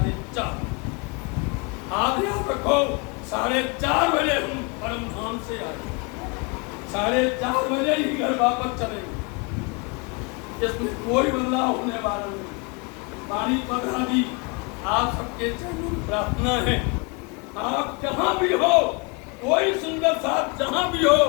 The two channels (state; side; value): quieter; right; 31.1 dB